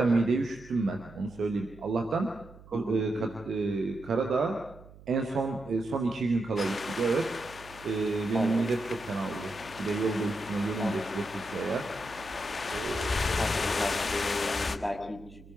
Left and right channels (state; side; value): noise; right; hum, 20 dB below the sound